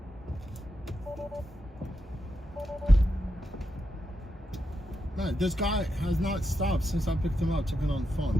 Man, this guy has not stopped since I picked him up, took it on the phone.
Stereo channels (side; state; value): both; normal; correlation 0.85